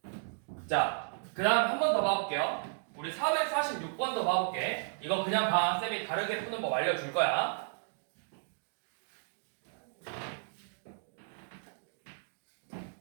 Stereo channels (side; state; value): left; silent; digital silence